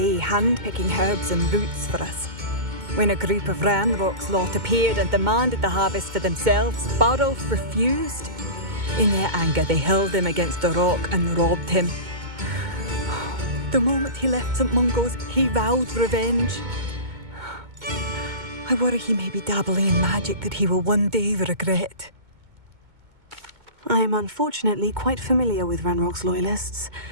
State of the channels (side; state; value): left; late; 2.2 ms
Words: hand-picking herbs and roots for us. When a group of Ranrock's lot appeared and demanded the harvest for themselves, Bardolph refused. In their anger, they hurled him against a rock and robbed him. The moment he left St. Mungo's, he vowed revenge. I worry he may be dabbling in magic that he will one day regret. I am unfortunately quite familiar with Ranrock's loyalists.